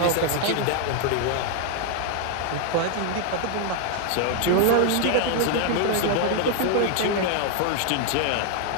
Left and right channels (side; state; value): both; different; correlation 0.00